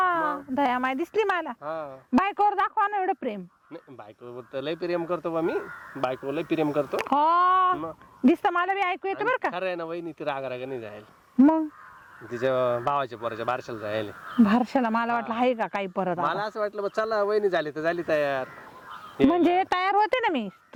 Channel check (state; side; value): identical; both; correlation 1.00